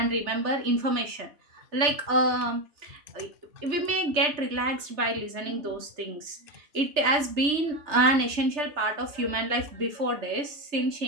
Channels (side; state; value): left; late; 3.3 ms